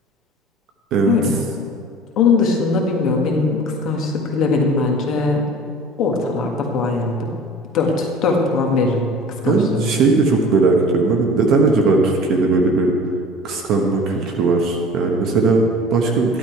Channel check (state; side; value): normal; both; correlation 0.43